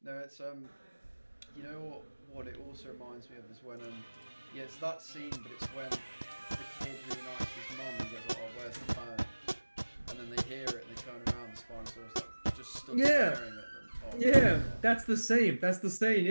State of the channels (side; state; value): both; inverted; correlation -1.00